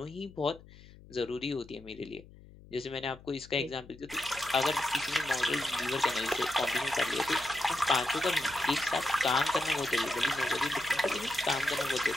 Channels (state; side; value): noise; left; hum, 21 dB below the sound